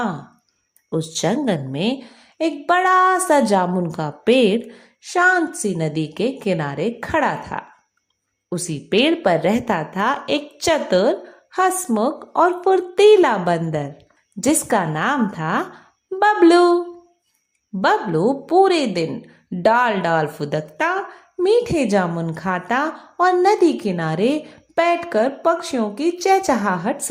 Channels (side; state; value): both; identical; correlation 1.00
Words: उस जंगल में एक बड़ा सा जामुन का पेड़ शांत सी नदी के किनारे खड़ा था। उसी पेड़ पर रहता था एक चतुर, हंसमुख और फुर्तीला बंदर जिसका नाम था बबलू। बबलू पूरे दिन डाल डाल फुदकता, मीठे जामुन खाता और नदी किनारे बैठकर पक्षियों की चहचहाहट